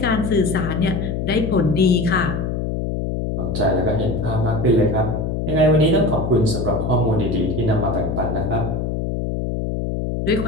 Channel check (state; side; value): noise; left; hum, 2 dB below the sound